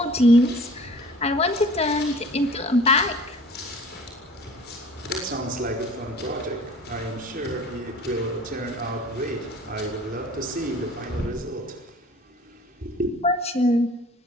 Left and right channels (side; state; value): both; normal; correlation 0.47